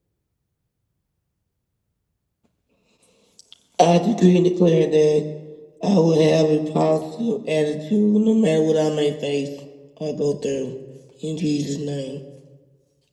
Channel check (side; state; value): both; identical; correlation 1.00